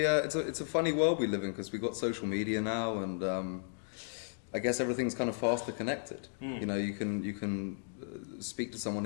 a funny world we live in because we've got social media now, and I guess everything's kind of faster connected. You know, you can speak to someone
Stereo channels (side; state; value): right; silent; digital silence